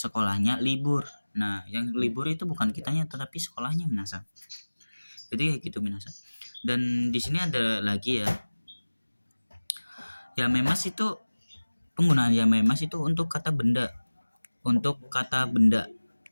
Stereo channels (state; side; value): inverted; both; correlation -1.00